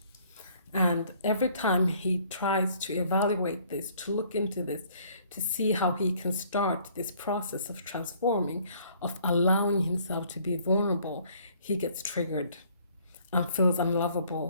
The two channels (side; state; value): both; inverted; correlation -0.60